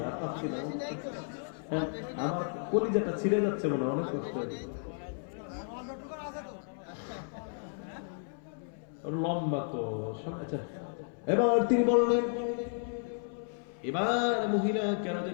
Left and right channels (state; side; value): silent; right; 56 dB below the other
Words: আমার কলিজাটা ছিঁড়ে যাচ্ছে মনে অনেক কষ্ট, লম্বা তো। এবার তিনি বললেন, এবার মহিলা কেন